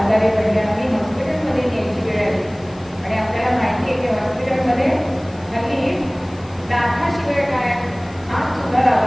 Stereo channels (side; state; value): left; noise; hiss, 26 dB below the sound